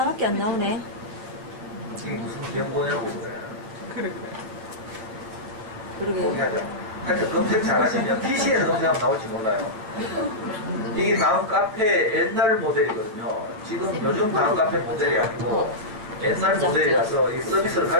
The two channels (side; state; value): left; late; 9.1 ms